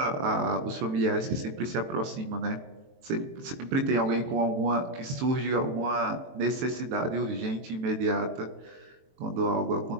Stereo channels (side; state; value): left; late; 23 ms